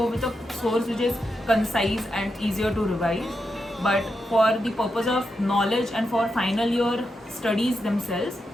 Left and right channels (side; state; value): both; normal; correlation 0.86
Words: with a source which is concise and easier to revise. But for the purpose of knowledge and for final year studies themselves,